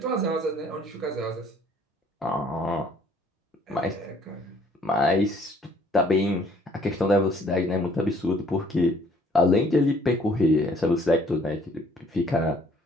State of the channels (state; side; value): normal; both; correlation 0.60